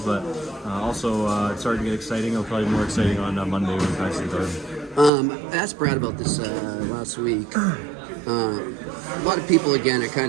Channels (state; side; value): drops out; left; at 5.1 s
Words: also it's starting to get exciting. It'll probably be more exciting on Monday when we practice in the garden. I asked Brad about this last week. A lot of people, again, are